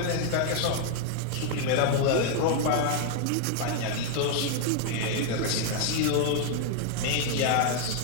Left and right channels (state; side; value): different; both; correlation 0.00